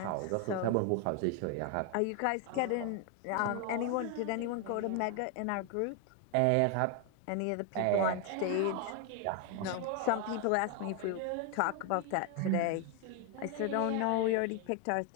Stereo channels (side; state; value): both; different; correlation 0.01